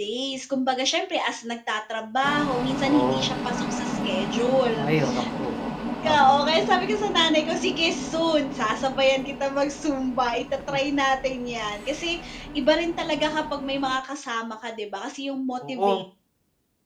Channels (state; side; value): identical; both; correlation 1.00